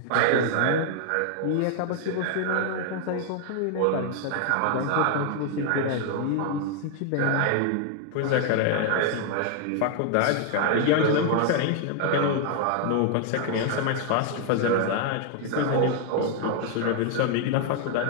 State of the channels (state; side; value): different; both; correlation 0.00